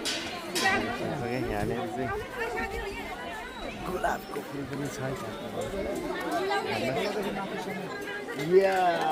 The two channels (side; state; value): both; identical; correlation 1.00